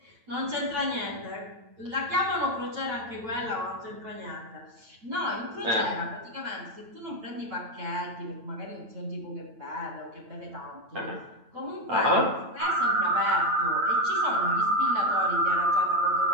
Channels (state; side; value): late; left; 9.0 ms